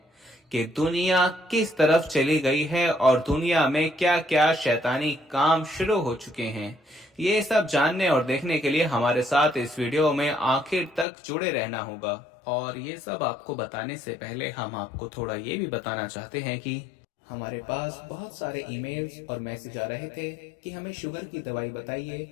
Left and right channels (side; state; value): right; drops out; at 11.1 s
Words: कि दुनिया किस तरफ चली गई है और दुनिया में क्या क्या शैतानी काम शुरू हो चुके हैं। ये सब जानने और देखने के लिए हमारे साथ इस वीडियो में आखिर तक जुड़े रहना होगा। और ये सब आपको बताने से पहले हम आपको थोड़ा ये भी बताना चाहते हैं कि हमारे पास बहुत सारे ईमेल्स और मैसेज आ रहे थे कि हमें शुगर की दवाई बताइए।